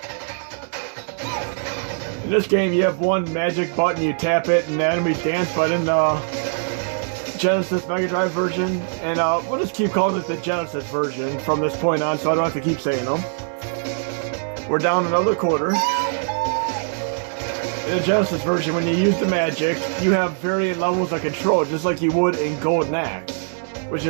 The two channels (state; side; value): silent; left; 64 dB below the other